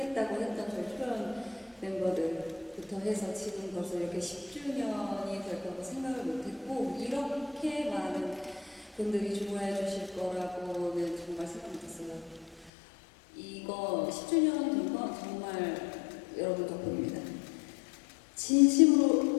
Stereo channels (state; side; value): drops out; right; at 12.7 s